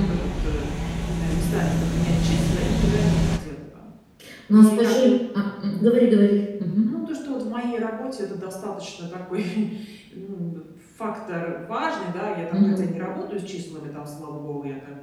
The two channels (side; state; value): both; identical; correlation 1.00